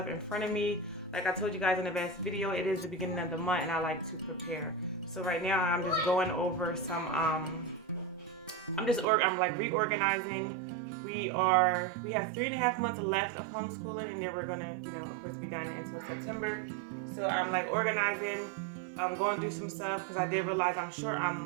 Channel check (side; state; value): left; drops out; at 9.1 s